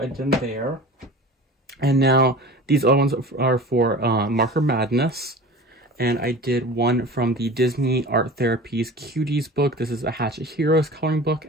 I did there. And now these other ones are for Marker Madness, and I did one from the Disney Art Therapies Cuties book. This is a Hatchet Heroes coloring book,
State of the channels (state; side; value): normal; both; correlation 0.37